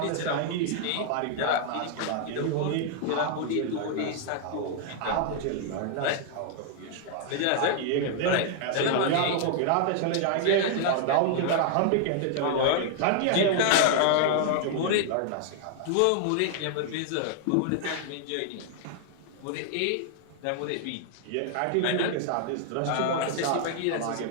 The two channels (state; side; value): different; both; correlation 0.00